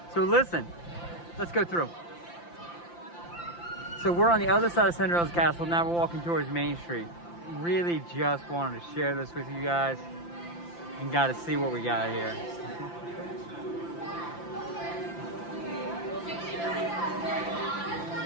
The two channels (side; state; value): right; late; 5.8 ms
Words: So listen, let's go through. So we're on the other side of Cinderella's castle. Now we're walking towards Main Street. Really just wanted to share this with you guys and got to see what we got here.